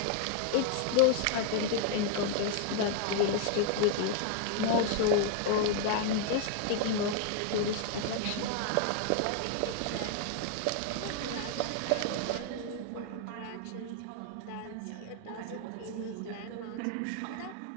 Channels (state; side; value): different; both; correlation 0.00